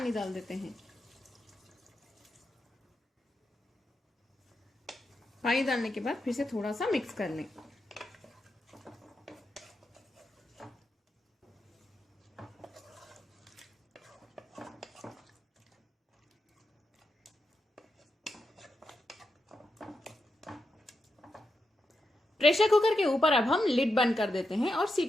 डाल देते हैं। पानी डालने के बाद फिर से थोड़ा सा मिक्स कर लें। प्रेशर कुकर के ऊपर अब हम लिड बंद कर देते हैं और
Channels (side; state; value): both; normal; correlation 0.86